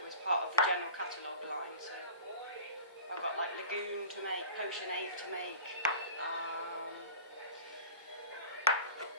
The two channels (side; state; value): both; inverted; correlation -0.38